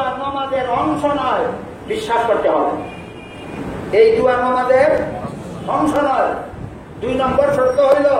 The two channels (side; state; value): both; identical; correlation 1.00